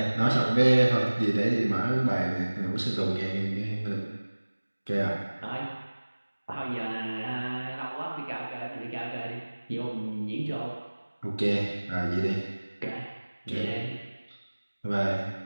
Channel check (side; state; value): both; inverted; correlation -1.00